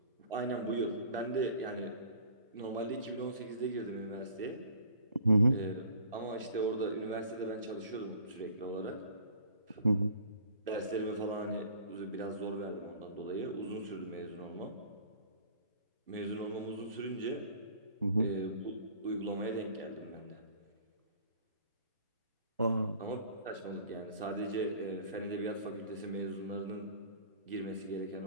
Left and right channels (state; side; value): inverted; both; correlation -0.50